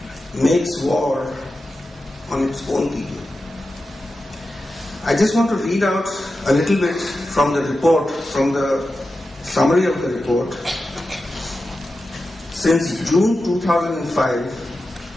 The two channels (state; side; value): normal; both; correlation 0.92